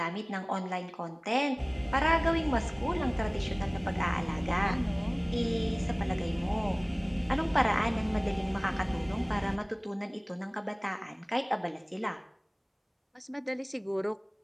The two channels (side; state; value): both; identical; correlation 1.00